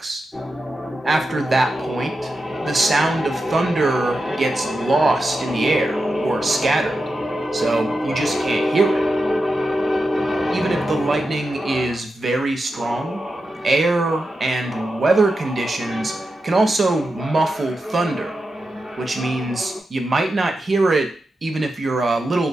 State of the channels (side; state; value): both; normal; correlation 0.89